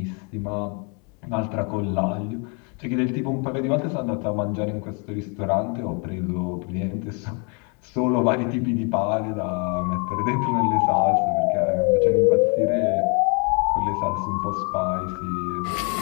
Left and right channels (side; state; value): right; quieter; 35.7 dB